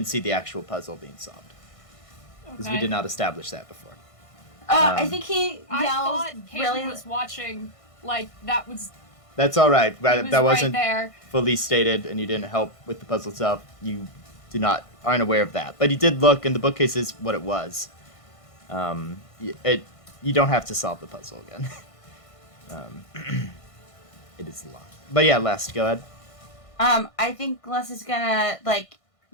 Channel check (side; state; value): right; late; 1.5 ms